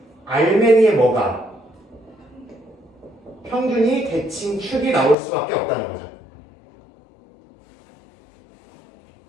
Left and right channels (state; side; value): drops out; right; at 5.2 s